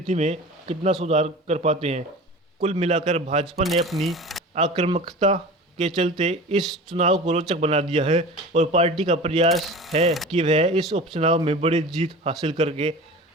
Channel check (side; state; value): both; normal; correlation 0.36